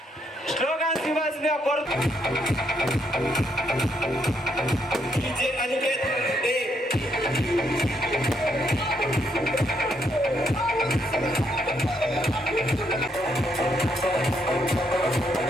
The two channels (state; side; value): normal; both; correlation 0.75